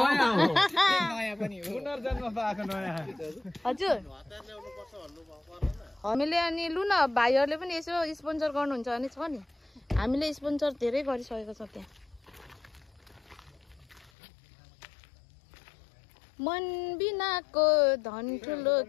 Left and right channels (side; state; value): right; drops out; at 14.1 s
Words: हो? नयाँ पनि हो, पुनर्जन्म पाएको नयाँ। हजुर हामीले अनि लु न भाइहरूले पनि यसो स्पोन्सर गर्नुहुन्छ भने छ नि, हामीले स्पोन्सर धेरै गरिसकेको छ त्यहाँ। मन बिनाको धन ठुलो